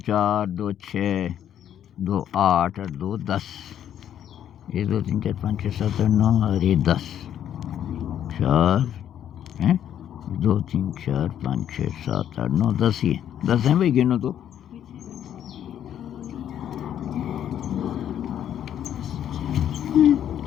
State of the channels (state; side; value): quieter; right; 10.2 dB